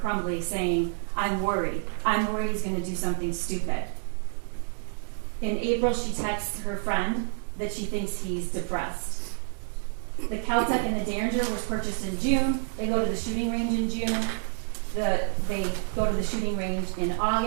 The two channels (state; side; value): silent; left; 59 dB below the other